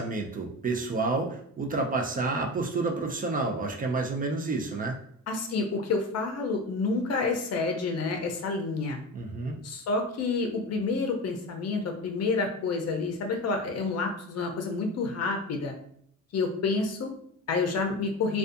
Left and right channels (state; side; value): normal; both; correlation 0.26